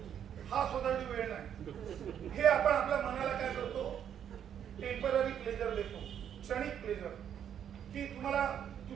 हा स्वतःची वेळ नाही. हे आपण आपल्या मनाला काय करतो, टेम्पररी प्लेजर देतो, क्षणिक प्लेजर, की तुम्हाला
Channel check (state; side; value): quieter; left; 9.1 dB